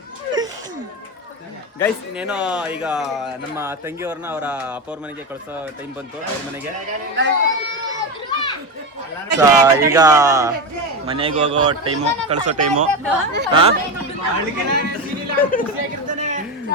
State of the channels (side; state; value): both; normal; correlation 0.17